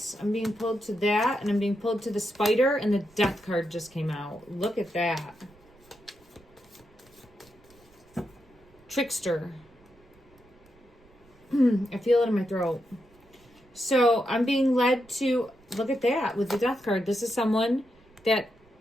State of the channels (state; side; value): noise; right; rumble, 29 dB below the sound